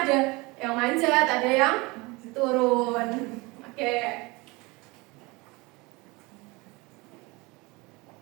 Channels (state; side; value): quieter; left; 24.7 dB